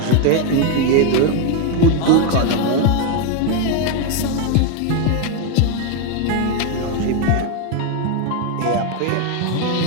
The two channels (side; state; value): both; different; correlation 0.01